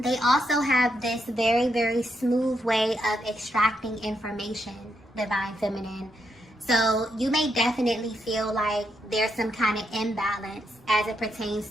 also have this very, very smooth way of extracting information, Divine Feminine. So you may definitely feel like there's some kind of imbalance as it pertains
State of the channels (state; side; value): normal; both; correlation 0.80